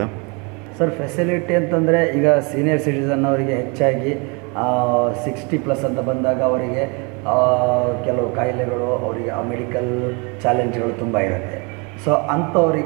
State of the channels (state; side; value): quieter; left; 31.5 dB